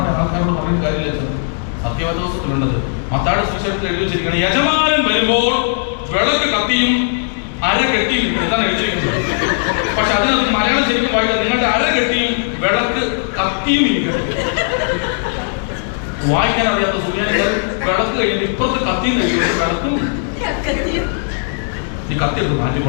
ആൾക്കാരോട് പറഞ്ഞിട്ട് കാര്യമില്ല അച്ഛൻ. സത്യവേദപുസ്തകത്തിലുണ്ടത്. മത്തായിയുടെ സുവിശേഷത്തിൽ എഴുതി വെച്ചിരിക്കുകയാണ്, യജമാനൻ വരുമ്പോൾ വിളക്ക് കത്തിയും അര കെട്ടിയും. എന്താണ് എഴുതിയിരിക്കുന്നത്? പക്ഷെ അതിനകത്ത് മലയാളം ശരിക്കും വായിക്കാം, നിങ്ങളുടെ അര കെട്ടിയും വിളക്ക് കത്തിയും ഇരിക്കണം. വായിക്കാൻ അറിയാത്ത സുറിയാനികൾ വിളക്ക് കഴിഞ്ഞിട്ട് ഇപ്പുറത്ത് കത്തിയും കഴിക്കും. വിളക്കും ഈ കത്തിയെടുത്ത്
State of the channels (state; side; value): silent; right; digital silence